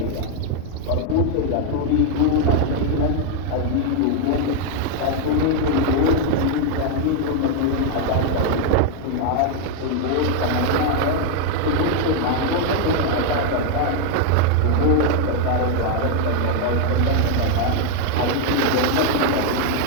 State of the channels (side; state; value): both; different; correlation 0.01